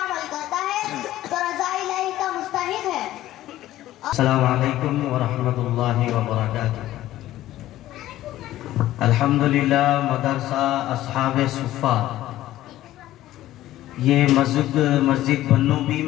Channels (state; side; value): quieter; right; 14.5 dB